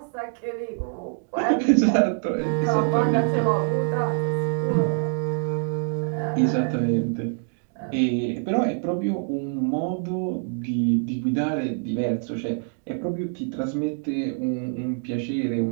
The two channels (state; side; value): silent; left; 62 dB below the other